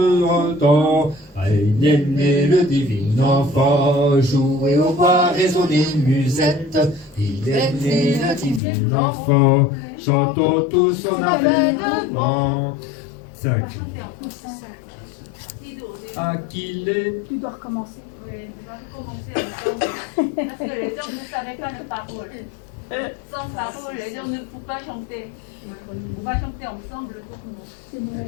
temps. Il est né le divin enfant, jouez au bois, résonnez musette. Il est né le divin enfant, chantons tous son avènement. 5. À qui est... Tu dois recommencer. Oui, tu dois recommencer encore. Parce que les gens ne savaient pas les paroles. Sans paroles, les gens ne pouvaient pas chanter. On va chanter ensemble tout le monde. C'est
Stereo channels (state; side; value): drops out; right; at 8.6 s